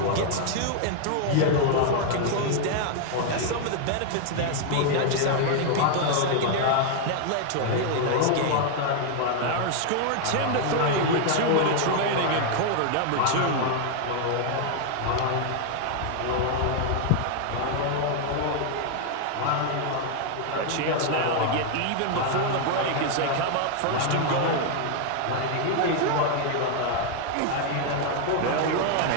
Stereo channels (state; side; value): different; both; correlation 0.00